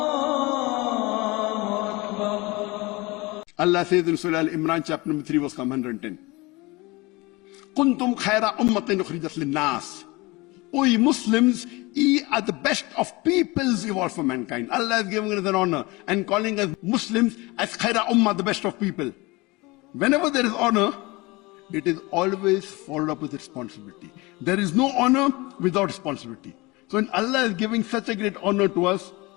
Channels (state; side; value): quieter; right; 23.6 dB